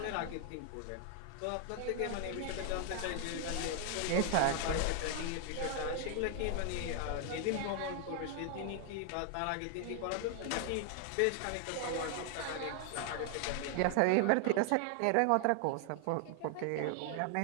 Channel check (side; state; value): both; different; correlation 0.00